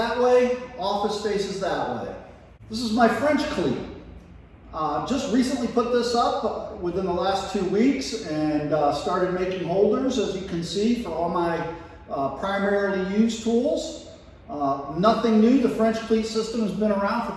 way, office faces that way. This is my French cleat. Just recently put this up within the last 2 weeks and started making holders, as you can see, for all my primarily used tools. Nothing new. The French cleat system has been around for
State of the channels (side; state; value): both; identical; correlation 1.00